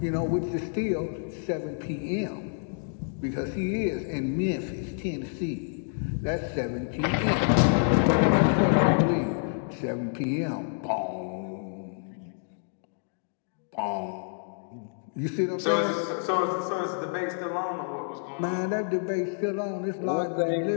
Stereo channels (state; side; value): silent; right; digital silence